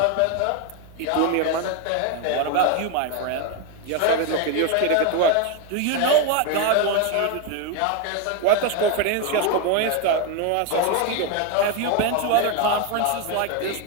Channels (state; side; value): different; both; correlation 0.01